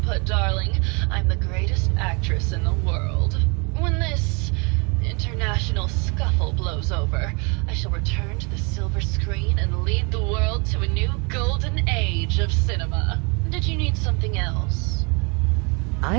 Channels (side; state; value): left; quieter; 31.9 dB